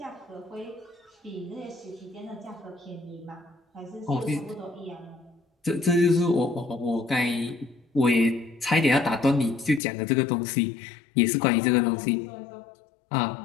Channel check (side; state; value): right; drops out; at 9.8 s